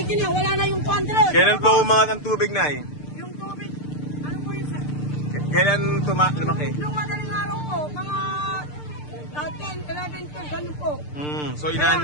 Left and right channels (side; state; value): right; late; 6.7 ms